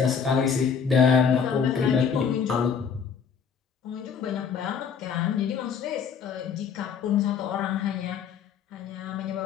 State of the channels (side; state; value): right; quieter; 6.7 dB